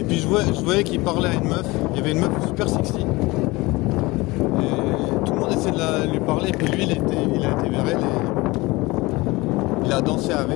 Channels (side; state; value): right; quieter; 22.2 dB